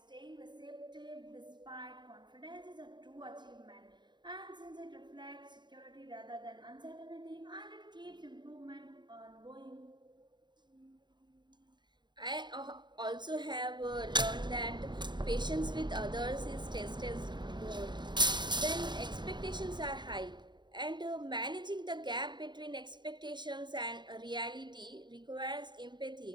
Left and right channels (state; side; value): late; left; 0.22 ms